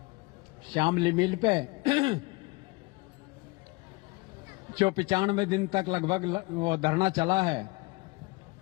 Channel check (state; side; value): quieter; right; 25.4 dB